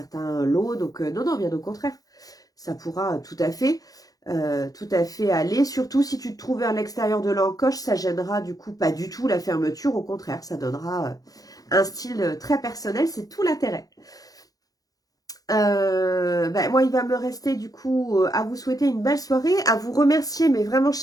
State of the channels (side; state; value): right; late; 0.18 ms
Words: lots. Donc, non, non, bien au contraire. Ça pourra tout à fait aller. Surtout si tu te trouves vers l'extérieur de l'encoche, ça gênera du coup pas du tout la fermeture. Au contraire, ça donnera un style très personnel. C'est tout l'intérêt. Moi, il va me rester du coup à vous souhaiter une belle soirée, à vous remercier, mais vraiment